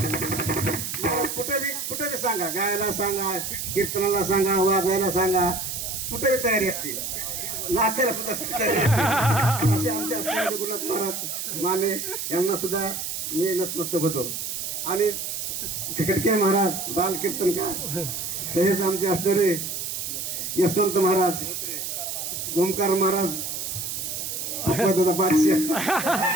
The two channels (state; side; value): noise; right; hiss, 4 dB below the sound